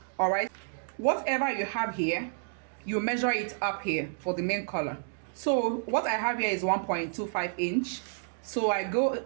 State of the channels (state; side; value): silent; left; digital silence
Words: All right, whatever you have here, you measure it up here for the main collar. So what I have here is 1.25 inch. So I go